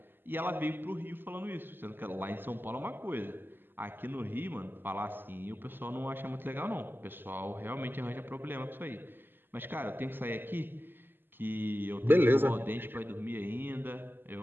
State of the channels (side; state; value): left; late; 0.097 ms